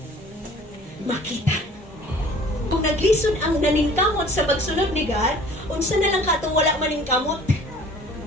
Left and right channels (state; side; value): normal; both; correlation 0.50